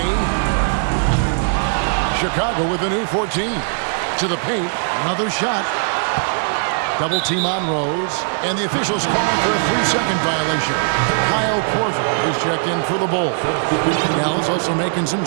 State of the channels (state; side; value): silent; left; 59 dB below the other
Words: Chicago with a new 14. To the paint. Another shot. Double team on Rose. And the officials calling for a 3-second violation. Kyle Korver, he's checked in for the Bulls. Dallas also making some